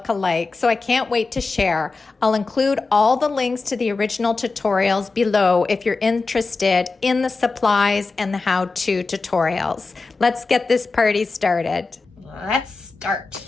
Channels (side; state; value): right; quieter; 4.0 dB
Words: So I can't wait to share. I'll include all the links to the original tutorials below if you're interested in the supplies and the how-to tutorials. Let's get this party started. Let's start.